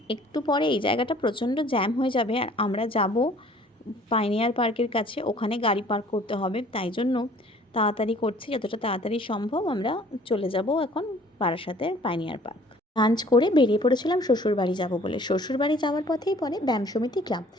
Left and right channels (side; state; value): both; normal; correlation 0.54